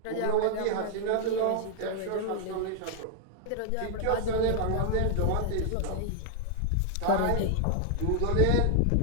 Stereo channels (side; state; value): both; different; correlation 0.00